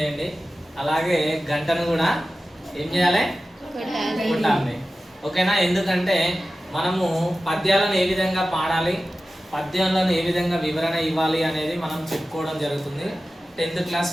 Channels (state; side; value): normal; both; correlation 0.95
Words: అలాగే గంటను కూడా ఏం చేయాలి, కొట్టాలి. ఓకేనా? ఎందుకంటే మనము పద్యాలను ఏ విధంగా పాడాలి, పద్యాలను ఏ విధంగా వివరణ ఇవ్వాలి అనేది మనం చెప్పుకోవడం జరుగుతుంది. 10th క్లాస్